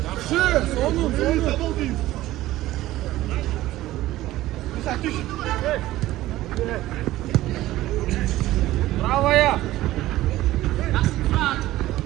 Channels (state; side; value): quieter; left; 15.9 dB